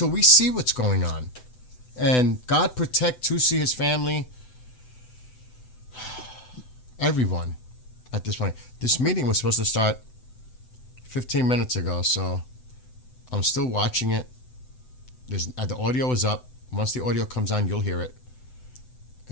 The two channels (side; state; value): right; late; 7.9 ms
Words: we see what's going on. And God protect Tusi, his family, everyone at this point. This meeting was supposed to start 15 minutes ago, so I'm still watching it. The audio is up. Once the audio comes on, you'll hear it.